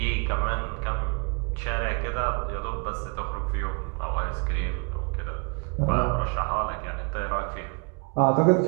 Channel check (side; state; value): left; quieter; 33.2 dB